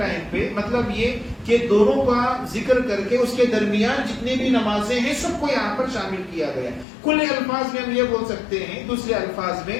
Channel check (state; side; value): drops out; right; at 6.9 s